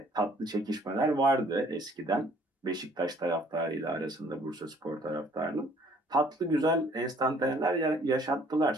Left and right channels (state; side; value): normal; both; correlation 0.58